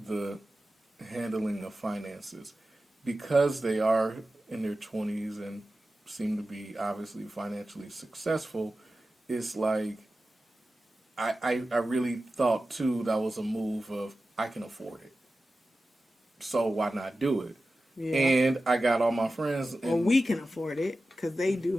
the handling of finances. Because they are in their 20s and seem to be obviously financially successful, it's like, I really thought, too, that was a move of, I can afford it. So why not do it? yeah. And I got all my friends. And Well, we can afford it because they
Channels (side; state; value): both; normal; correlation 0.94